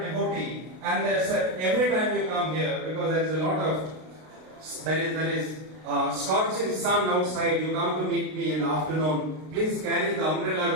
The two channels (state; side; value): late; left; 32 ms